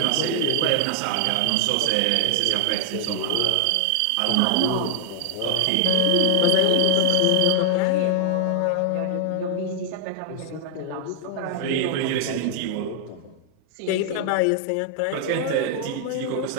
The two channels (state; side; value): different; both; correlation 0.00